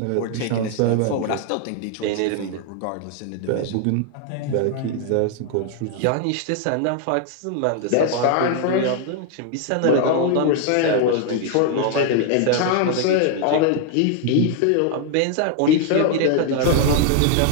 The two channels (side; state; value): both; different; correlation 0.00